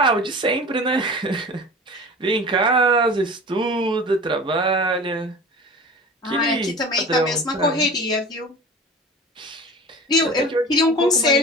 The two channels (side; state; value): both; normal; correlation 0.37